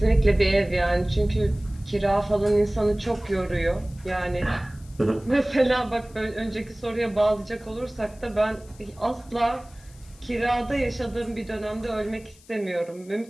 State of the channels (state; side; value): noise; left; hiss, 26 dB below the sound